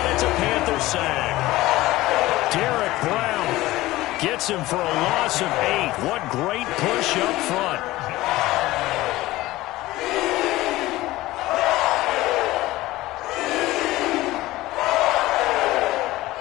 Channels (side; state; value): right; quieter; 17.8 dB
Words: It's a Panther sack. Derek Brown gets him for a loss of 8. What great push up front.